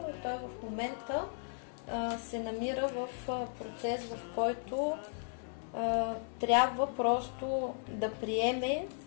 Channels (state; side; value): silent; right; 54 dB below the other